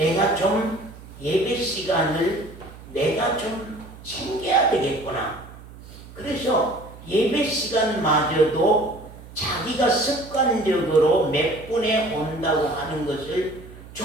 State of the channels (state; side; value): noise; right; hum, 18 dB below the sound